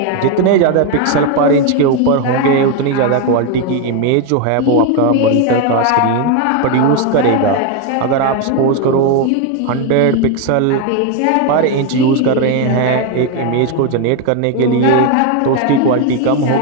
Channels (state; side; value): different; both; correlation 0.02